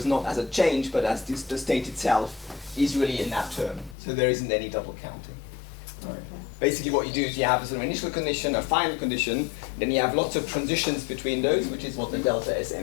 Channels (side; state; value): right; drops out; at 4.0 s